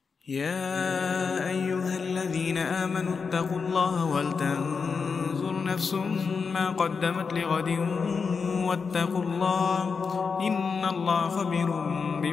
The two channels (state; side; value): quieter; right; 5.3 dB